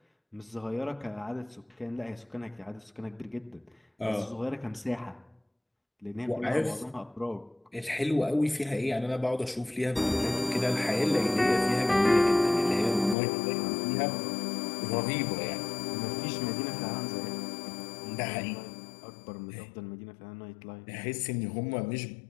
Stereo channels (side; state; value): right; drops out; at 13.2 s